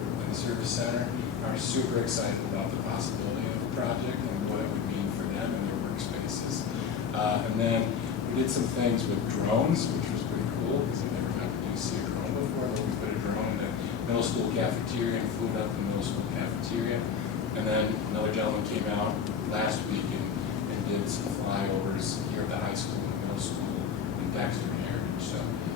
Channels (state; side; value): quieter; right; 6.8 dB